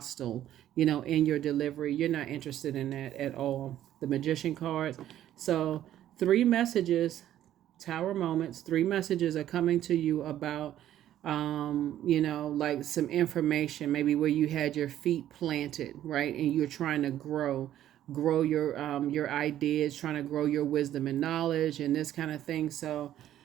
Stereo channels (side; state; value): left; quieter; 12.1 dB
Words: in your delivery. You're not interested in that at all. The Magician cards. So 3 messages, Tower moments, 3 messages are coming to you about like some information, maybe where you had your feet planted, right? And you're trying to grow your ideas, trying to grow your wisdom and knowledge and this kind of thing. So